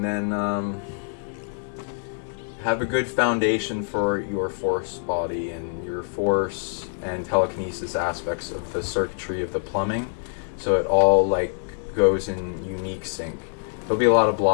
then have a good foundation for your force body and your force and telekinesis aspects of the circuitry of the plumbing, so it all like goes in unique sync. There'll be a lot of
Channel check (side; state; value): right; silent; digital silence